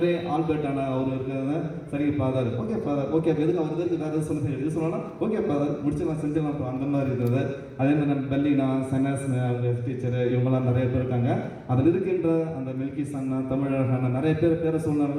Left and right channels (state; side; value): identical; both; correlation 1.00